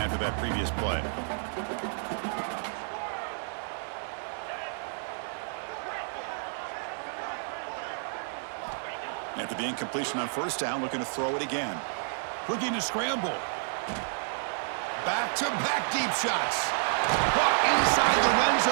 that previous play. After the incompletion on first down, looking to throw it again. Looking to scramble. Back-to-back deep shots. Caught inside the red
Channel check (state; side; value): silent; left; digital silence